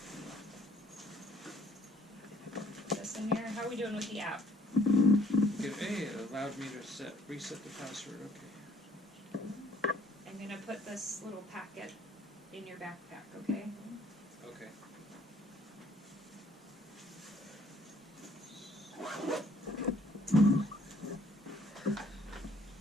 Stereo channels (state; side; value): normal; both; correlation 0.60